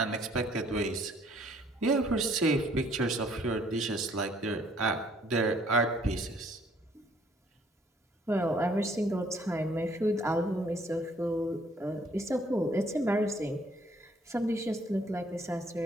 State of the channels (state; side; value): normal; both; correlation 0.62